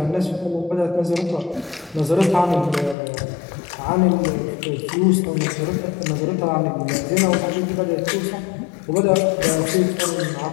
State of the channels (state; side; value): drops out; right; at 3.0 s